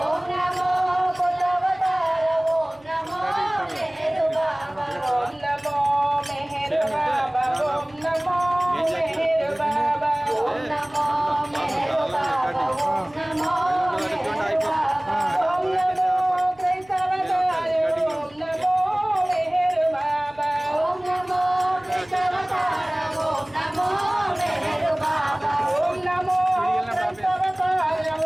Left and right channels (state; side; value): noise; right; hum, 30 dB below the sound